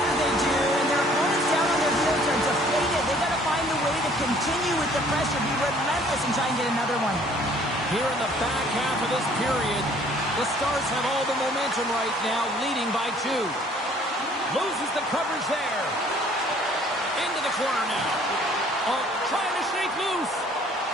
they do. And their opponents down on their heels are deflated. They got to find a way to continue with the pressure, be relentless, and try and get another one. Here in the back half of this period, the Stars have all the momentum right now, leading by 2. Loses the coverage there. Into the corner now. Oh, trying to shake loose.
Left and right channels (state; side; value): normal; both; correlation 0.57